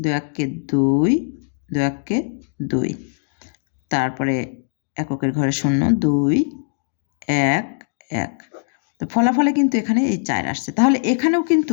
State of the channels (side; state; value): right; silent; digital silence